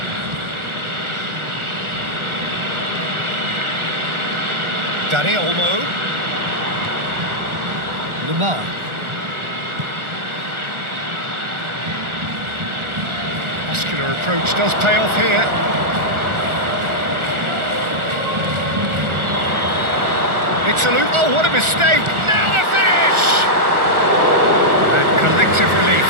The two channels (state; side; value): late; left; 1.4 ms